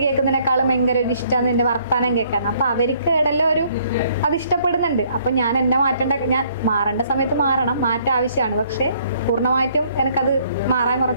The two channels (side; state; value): both; inverted; correlation -0.64